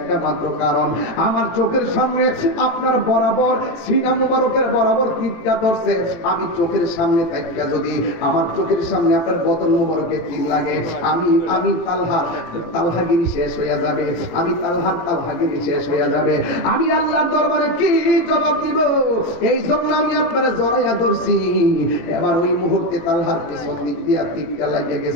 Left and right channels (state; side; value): late; right; 18 ms